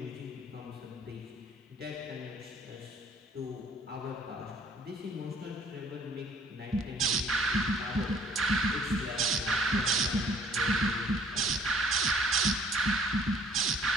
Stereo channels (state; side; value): normal; both; correlation 0.59